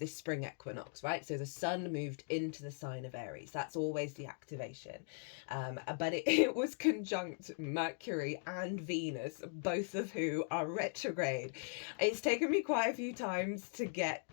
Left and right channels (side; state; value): right; silent; digital silence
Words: spring equinox, right? So the sun moved into the sign of Aries. That's always the activation. But it was conjunct Mercury and Venus, both of who are retrograde. It's taken me quite a few times to get